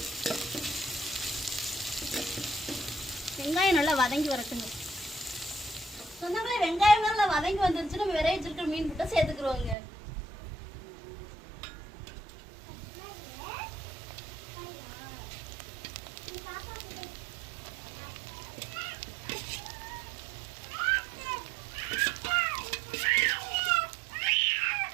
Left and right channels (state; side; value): drops out; left; at 9.8 s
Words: வெங்காயம் நல்லா வதங்கி வரட்டுங்க. சொன்னாங்களே வெங்காயம் நல்லா வதங்கி வந்துருச்சு. நம்ம விரைய வச்சிருக்கிற மீன் புட்டை சேர்த்துக்கிறோங்க.